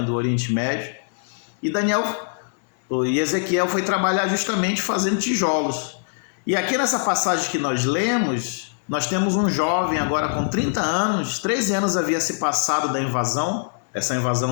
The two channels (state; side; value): silent; right; digital silence